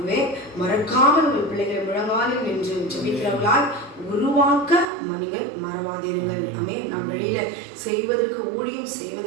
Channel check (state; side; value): drops out; left; at 4.9 s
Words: மறக்காமல் உங்கள் பிள்ளைகளை முழங்காலில் நின்று ஜெபிக்கிறவர்களால் உருவாக்க மனிதர் மறவாதிருங்கள். நாம் வெளியில செய்வதற்கு ஊழியம்